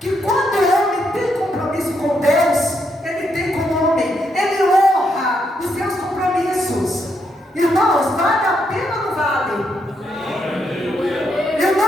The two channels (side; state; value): both; normal; correlation 0.78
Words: quando o homem tem compromisso com Deus, ele tem como homem, ele honra os seus compromissos. Irmãos, vale a pena ou não vale?